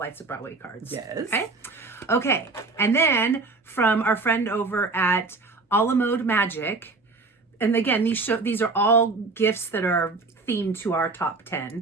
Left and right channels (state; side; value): quieter; left; 3.8 dB